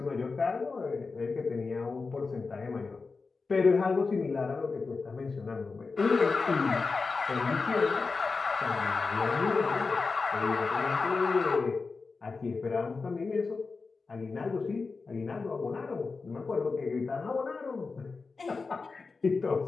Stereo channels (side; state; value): right; quieter; 4.3 dB